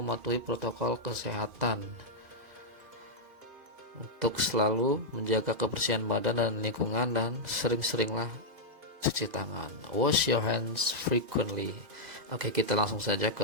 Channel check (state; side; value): late; left; 2.5 ms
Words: protokol kesehatan, untuk selalu menjaga kebersihan badan dan lingkungan, dan sering-seringlah cuci tangan. Wash your hands frequently. Oke, kita langsung saja